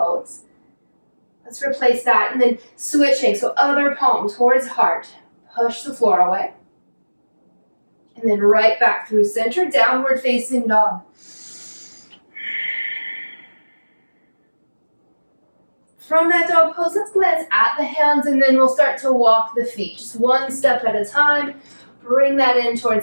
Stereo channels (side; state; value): both; inverted; correlation -1.00